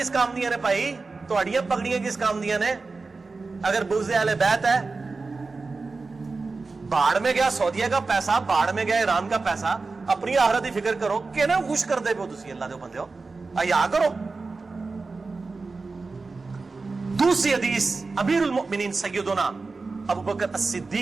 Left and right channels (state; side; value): quieter; left; 4.0 dB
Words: کام دیا نے بھائی, تو اڈیاں پکڑیاں کس کام دیا نے؟ اگر بغض اہل بیت ہے, باڑ میں گیا سعودیہ کا پیسہ, باڑ میں گیا ایران کا پیسہ, اپنی آخرت کی فکر کرو کہ نا خوش کر دے پو تسی اللہ دے بندے ہو, ایا کرو. دوسری حدیث امیر المؤمنین سیدنا ابو بکر